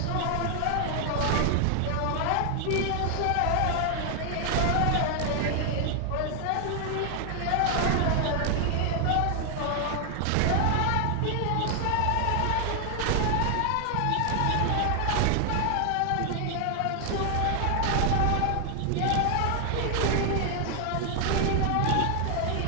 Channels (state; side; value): different; both; correlation 0.00